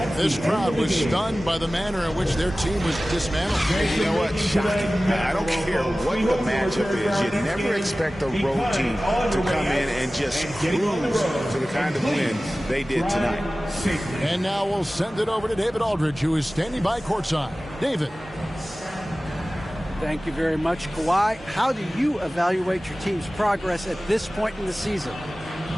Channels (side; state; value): both; normal; correlation 0.97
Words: This crowd was stunned by the manner in which their team was dismantled. You know what? Shocking. I don't care what the matchup is. You never expect a road team to come in and just cruise to the kind of win they did tonight. And now we'll send it over to David Aldridge, who is standing by courtside. David. Thank you very much, Kawhi. How do you evaluate your team's progress at this point in the season?